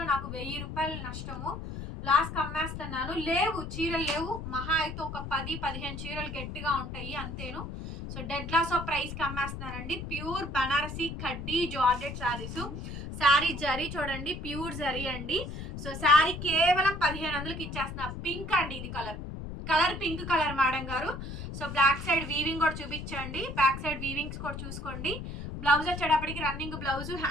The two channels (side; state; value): left; noise; rumble, 8 dB below the sound